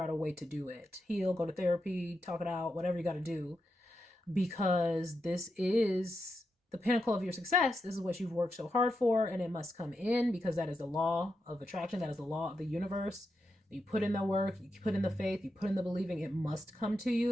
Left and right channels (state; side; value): normal; both; correlation 0.86